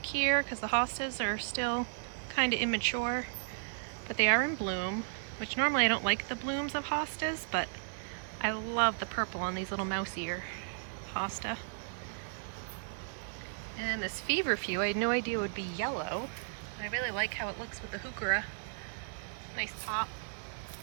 here because the hostas are still kind of immature, but they are in bloom, which normally I don't like the blooms of hostas, but I love the purple on these little mouse ear hosta. And then this feverfew, I had no idea it would be yellow, but I really like how it looks with the heuchera. Nice pop.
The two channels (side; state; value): left; silent; digital silence